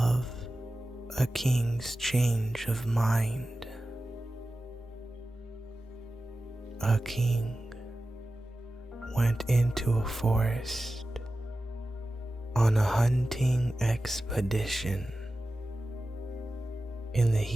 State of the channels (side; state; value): both; normal; correlation 0.94